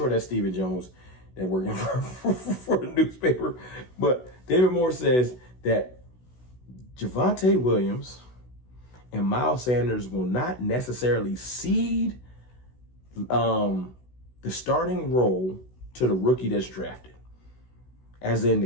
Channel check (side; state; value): right; late; 16 ms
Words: that's Stephen Jones that working for the newspaper. But David Moore says that Javonte Williams and Miles Sanders will not necessarily cede the starting role to the rookie that's drafted. As in,